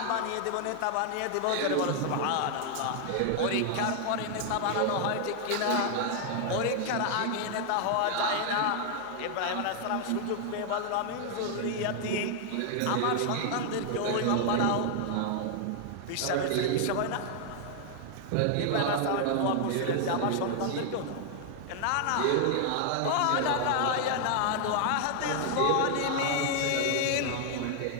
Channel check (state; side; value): different; both; correlation 0.00